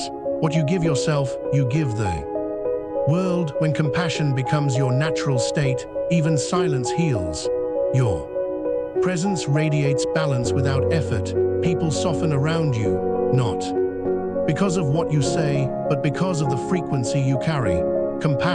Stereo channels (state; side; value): identical; both; correlation 1.00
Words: what you give yourself, you give the world. When compassion becomes your natural state, even silence heals. Your presence radiates balance without effort. People soften around you, not because of what you say, but because of the frequency you carry.